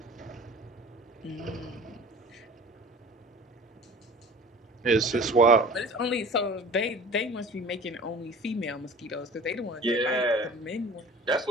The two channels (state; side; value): normal; both; correlation 0.42